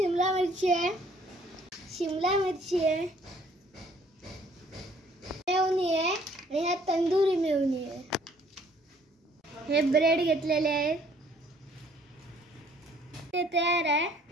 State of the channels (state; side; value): normal; both; correlation 0.60